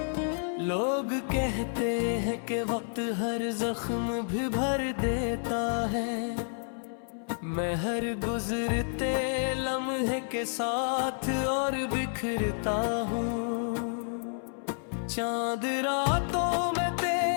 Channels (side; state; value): right; silent; 58 dB below the other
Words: लोग कहते हैं कि वक्त हर जख्म भी भर देता है, मैं हर गुजरते लम्हे के साथ और बिखरता हूँ। चांद रातों में